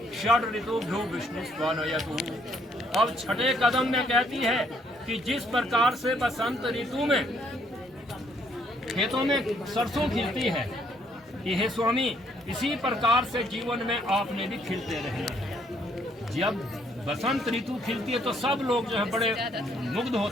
षड ऋतुभ्यो विष्णु स्वानयतु। अब छठे कदम में कहती है कि जिस प्रकार से बसंत ऋतु में खेतों में सरसों खिलती है कि हे स्वामी इसी प्रकार से जीवन में आपने भी खिलते रहना है। जब बसंत ऋतु खिलती है तो सब लोग जो है बड़े मुग्ध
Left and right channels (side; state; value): both; normal; correlation 0.68